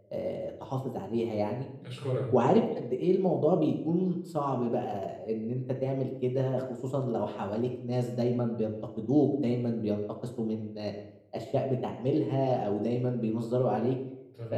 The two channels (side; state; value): both; identical; correlation 1.00